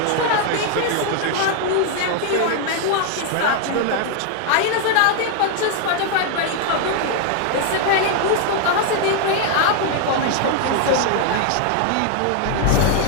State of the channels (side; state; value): both; different; correlation 0.00